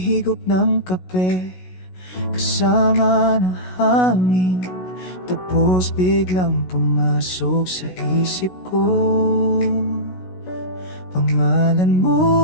ng kape, kasama ng hangin. Tapos biglang pumasok sa isip ko pangalan mo.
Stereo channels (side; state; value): right; late; 16 ms